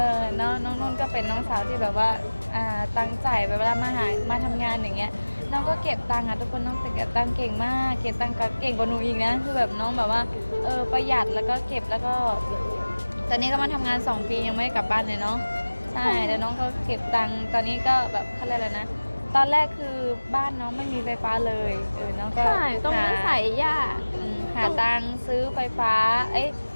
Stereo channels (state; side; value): inverted; both; correlation -1.00